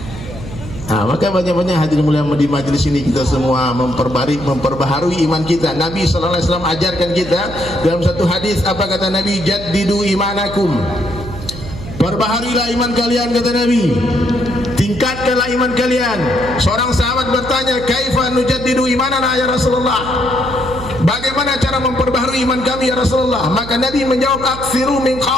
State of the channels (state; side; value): noise; right; hum, 11 dB below the sound